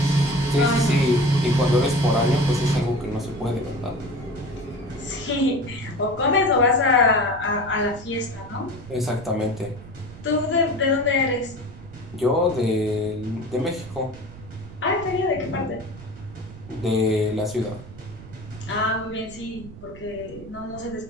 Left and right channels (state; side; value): noise; right; rumble, 17 dB below the sound